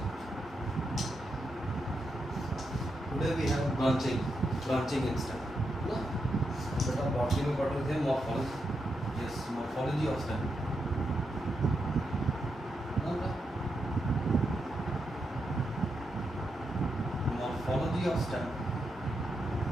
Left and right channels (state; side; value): normal; both; correlation 0.84